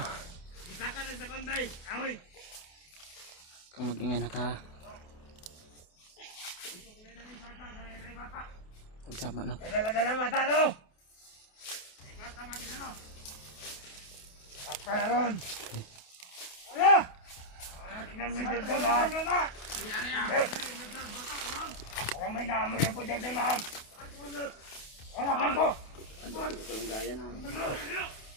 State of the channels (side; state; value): right; late; 28 ms